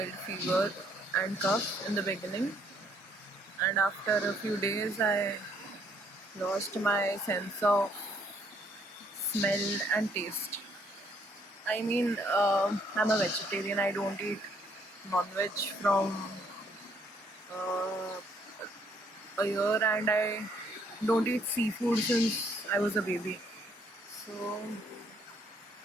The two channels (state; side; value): normal; both; correlation 0.67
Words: fever and cough in the beginning, and after a few days I lost my sense of smell and taste. I mean, I'm a vegetarian. I don't eat non-veg from uh, a year, and I don't eat seafood since I was a baby. So